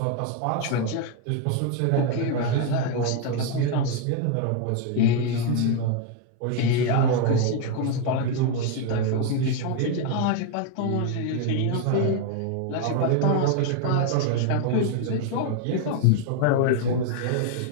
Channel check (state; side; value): different; both; correlation 0.01